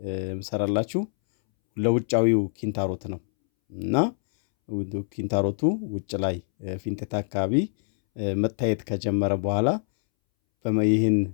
የምሰራላችሁ ለውጫዊው ኪንታሮት ነው እና ኪንታሮቱ ውጭ ላይ ፊንጤጣ አካባቢ መታየት ከጀመረ በኋላ ይህን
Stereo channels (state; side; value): silent; right; 62 dB below the other